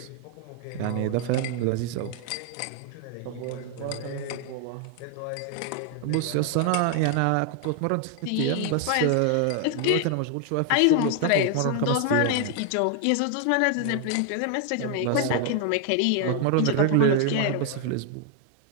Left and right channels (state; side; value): different; both; correlation 0.00